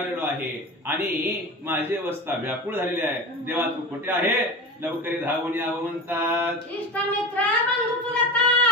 आहे आणि माझी अवस्था व्याकुळ झालेली आहे. देवा तू कुठे आहे, लवकरी धावून यावं म्हणतात. इष्टमित्र बंधू चुलता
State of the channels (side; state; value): both; normal; correlation 0.28